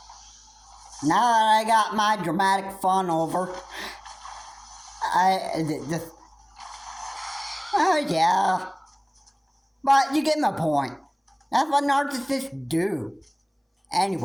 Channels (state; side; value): identical; both; correlation 1.00